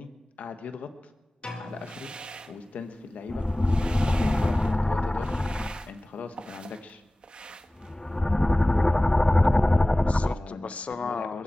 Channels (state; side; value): normal; both; correlation 0.98